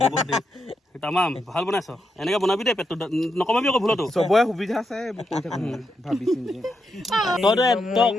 তামাম ভাল বনাইছ এনেকৈ বনাবি দেই পেটটো নকমাবি আকৌ ভুলতো চবৰে সুবিধা আছে ভাবিছো তই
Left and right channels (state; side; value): normal; both; correlation 0.83